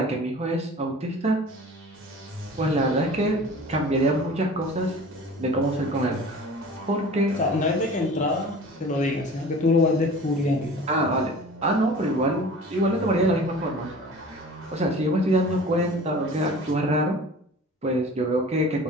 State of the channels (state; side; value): normal; both; correlation 0.42